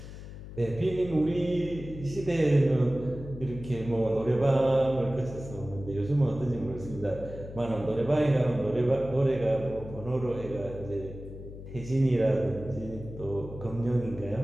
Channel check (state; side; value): noise; left; hum, 12 dB below the sound